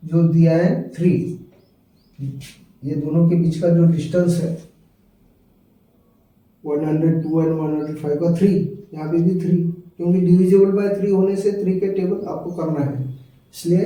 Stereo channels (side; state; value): both; identical; correlation 1.00